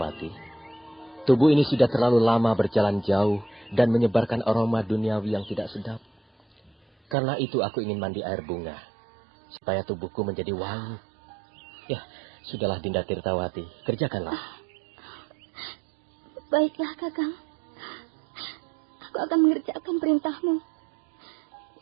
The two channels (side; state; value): left; drops out; at 7.2 s